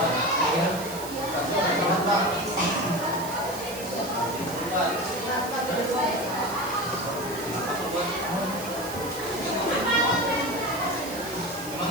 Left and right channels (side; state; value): right; noise; hiss, 13 dB below the sound